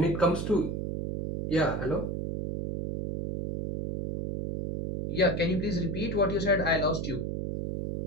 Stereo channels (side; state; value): right; noise; hum, 3 dB below the sound